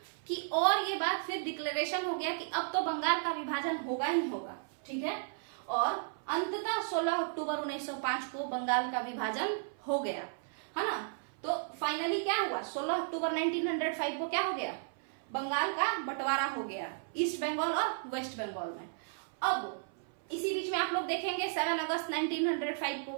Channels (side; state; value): left; silent; 55 dB below the other